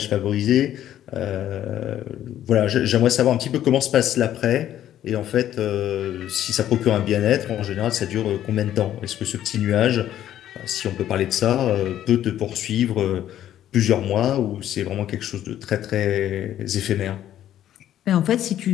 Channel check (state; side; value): quieter; right; 11.7 dB